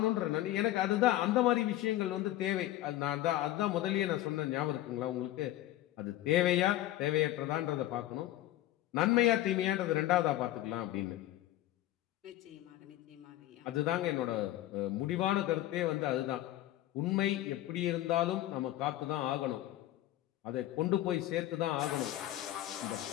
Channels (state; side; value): quieter; right; 14.6 dB